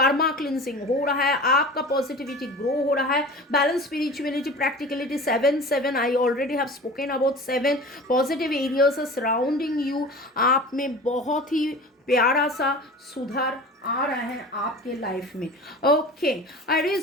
cleansing हो रहा है, आपका पॉजिटिविटी ग्रो हो रहा है, balance, spirituality, practicality, 7 7 I already have spoken about 7 positive areas surrounding you. आप में बहुत ही प्यारा सा सुधार आ रहा है आपके लाइफ में। ओके,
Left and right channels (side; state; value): both; normal; correlation 0.37